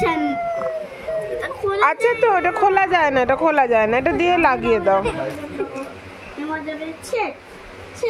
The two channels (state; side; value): identical; both; correlation 1.00